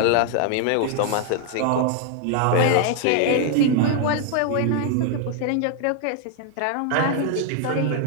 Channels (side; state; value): both; different; correlation 0.00